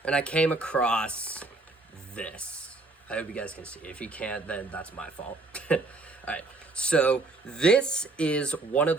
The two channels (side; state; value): left; quieter; 3.2 dB